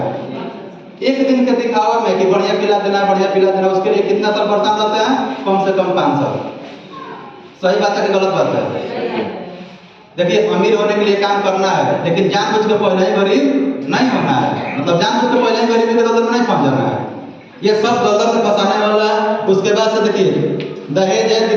एक दिन के दिखावा में कि बढ़िया पिला देना, बढ़िया पिला देना, उसके लिए कितना साल परेशान रहते हैं? कम से कम 5 साल। सही बात है कि गलत बात है? देखिए अमीर होने के लिए काम करना है, लेकिन जानबूझ के पहले ही गरीब नहीं होना है। मतलब जानबूझ के पहले ही गरीबी के दलदल में नहीं फंस जाना है। ये सब दलदल में फंसाने वाला है। उसके बाद से देखिए दहेज है,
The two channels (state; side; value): identical; both; correlation 1.00